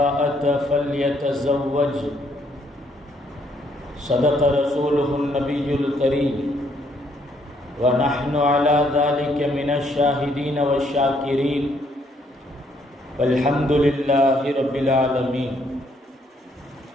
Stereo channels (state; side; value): normal; both; correlation 0.69